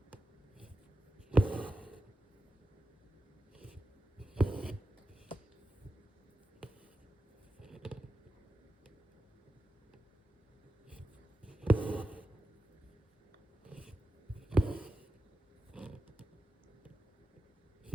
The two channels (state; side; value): normal; both; correlation 0.90